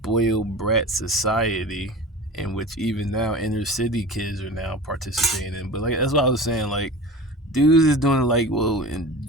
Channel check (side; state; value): both; normal; correlation 0.35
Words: brat society, in which even now inner city kids are now participating in. But like that's what I was saying, like dudes is doing like, well, in